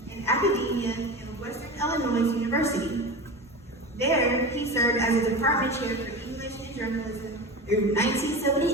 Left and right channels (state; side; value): normal; both; correlation 0.28